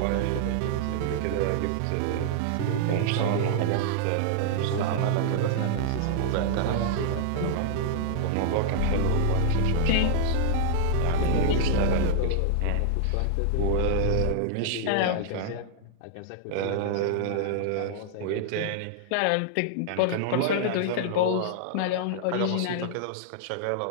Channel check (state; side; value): different; both; correlation -0.01